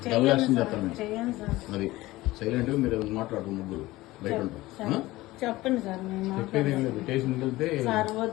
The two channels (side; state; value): right; quieter; 18.5 dB